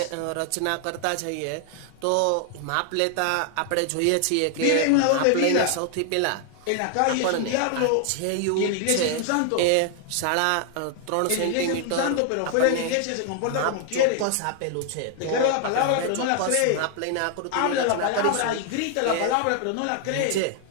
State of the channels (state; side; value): different; both; correlation 0.00